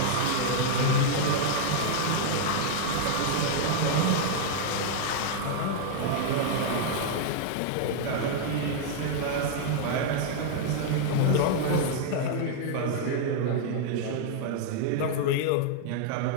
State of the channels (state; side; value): different; both; correlation -0.01